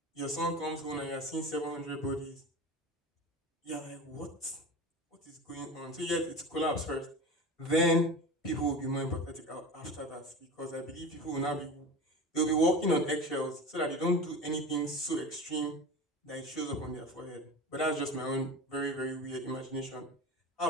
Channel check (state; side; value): normal; both; correlation 0.31